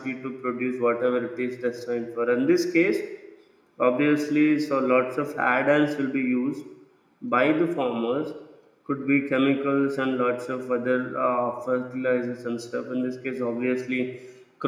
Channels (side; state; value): both; identical; correlation 1.00